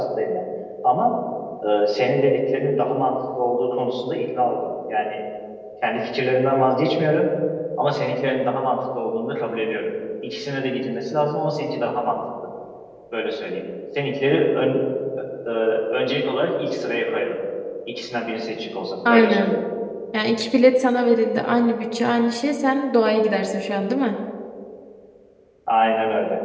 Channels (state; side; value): identical; both; correlation 1.00